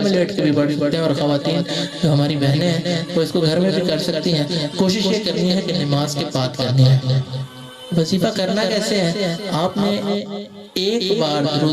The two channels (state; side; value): identical; both; correlation 1.00